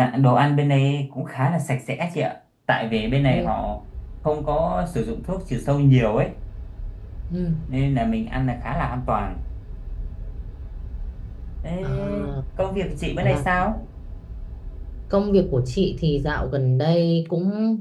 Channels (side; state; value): both; identical; correlation 1.00